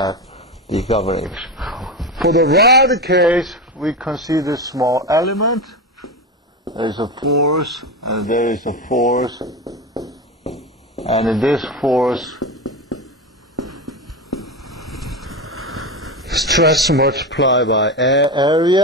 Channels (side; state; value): both; normal; correlation 0.19